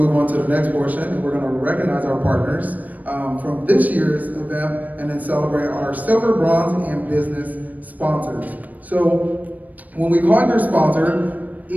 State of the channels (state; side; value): late; left; 0.077 ms